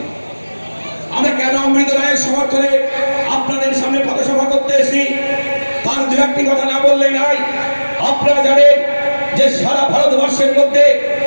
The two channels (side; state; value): both; inverted; correlation -1.00